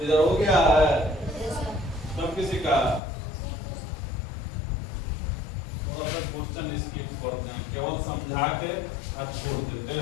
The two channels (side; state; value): right; drops out; at 3.0 s